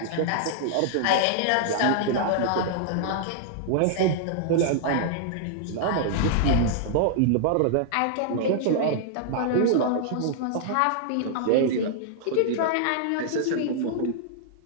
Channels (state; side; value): different; both; correlation -0.01